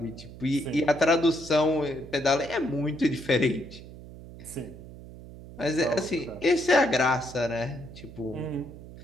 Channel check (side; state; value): right; noise; hum, 16 dB below the sound